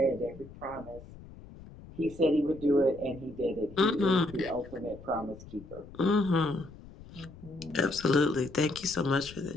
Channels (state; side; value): noise; left; rumble, 18 dB below the sound